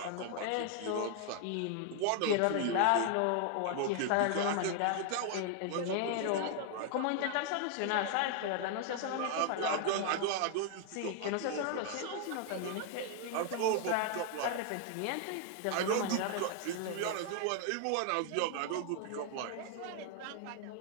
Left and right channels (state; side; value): different; both; correlation 0.00